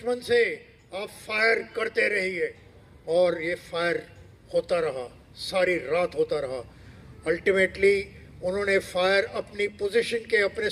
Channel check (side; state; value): both; identical; correlation 1.00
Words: से, आप फायर करते रहिए। और ये फायर होता रहा, सारी रात होता रहा। अल्टीमेटली उन्होंने फायर अपनी पोजीशन के अपने